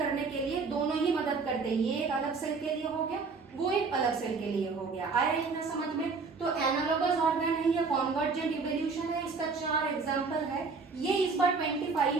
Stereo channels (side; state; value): left; quieter; 4.6 dB